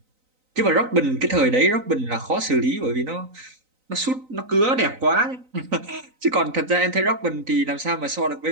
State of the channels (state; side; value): late; left; 3.9 ms